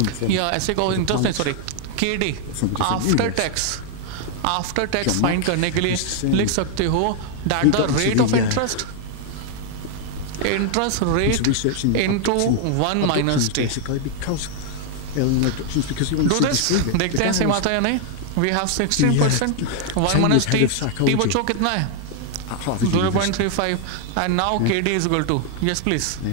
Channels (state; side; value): different; both; correlation 0.00